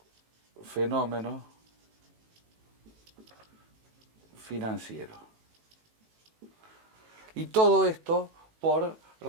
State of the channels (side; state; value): left; late; 18 ms